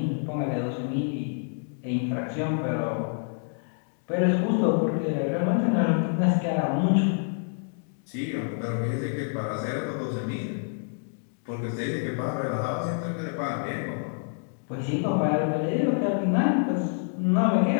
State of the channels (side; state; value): right; silent; 60 dB below the other